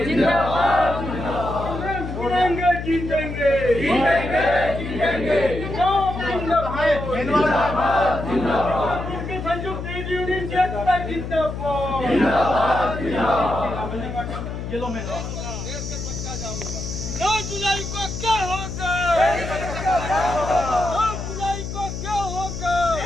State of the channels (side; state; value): left; noise; hum, 6 dB below the sound